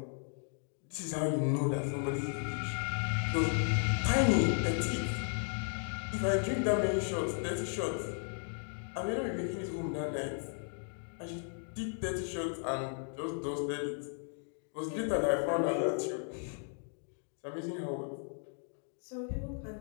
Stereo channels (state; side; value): silent; right; 54 dB below the other